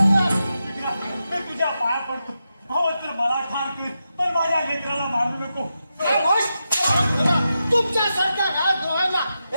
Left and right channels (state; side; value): inverted; both; correlation -0.88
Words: मी तुझ्या पाया पडतो. हो तर मला ठार कर, पण माझ्या लेकराला मारू नको. तुमच्यासारख्या राजद्रोहाला